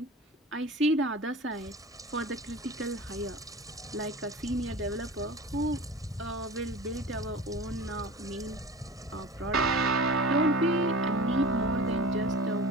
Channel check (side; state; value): both; normal; correlation 0.36